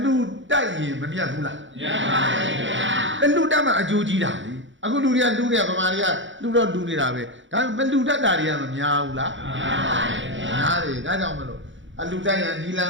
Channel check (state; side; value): late; left; 0.55 ms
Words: လူတိုက်ရင်မမြတ်ဘူးလားမြတ်ပါရဲ့ဗျာအလူတက်မှအကျိုးကြီးတာလေအခုလူတွေကလူတွေကဗမာတွေကလူတော့လူနေတာပဲဒါပေမဲ့လူတတ်တာတွေကမများဘူးလားများပါရဲ့ဗျာများတယ်ဒါကြောင့်မလို့အလူတက်ရနီလန်